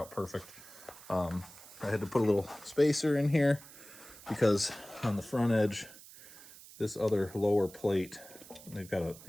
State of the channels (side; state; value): right; noise; hiss, 19 dB below the sound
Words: perfect. I had to put a little spacer in here because on the front edge, this other lower plate, they've got a,